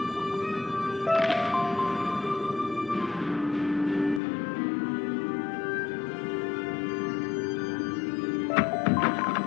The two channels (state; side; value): drops out; right; at 4.2 s